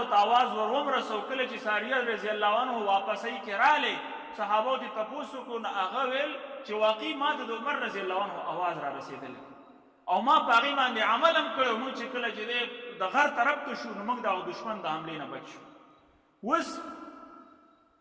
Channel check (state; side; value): identical; both; correlation 1.00